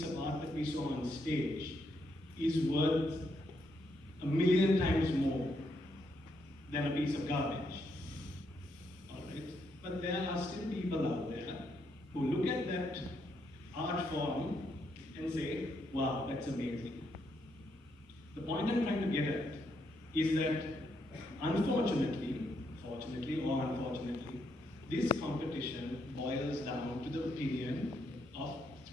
of art that we saw on stage is worth 1,000,000 times more than a piece of garbage. All right? But there are still people out there who look at that art form and say, wow, that's amazing. The point I'm trying to get at is that unfortunately, fortunately or unfortunately, this competition boils down to the opinion of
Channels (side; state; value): both; normal; correlation 0.77